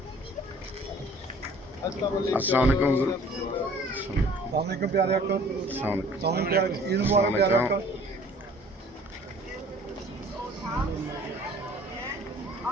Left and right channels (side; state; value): both; normal; correlation 0.52